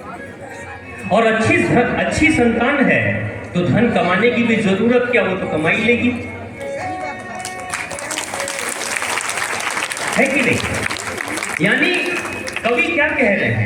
और अच्छी संतान है तो धन कमाने की भी जरूरत क्या, वो तो कमाई लेगी, है कि नहीं। यानी कवि क्या कह रहे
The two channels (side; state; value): both; identical; correlation 1.00